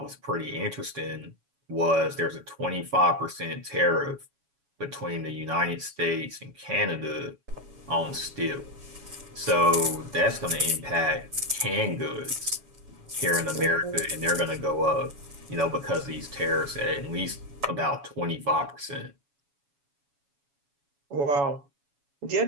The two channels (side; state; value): left; late; 7.1 ms